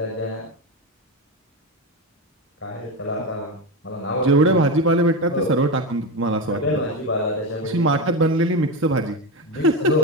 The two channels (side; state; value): both; normal; correlation 0.16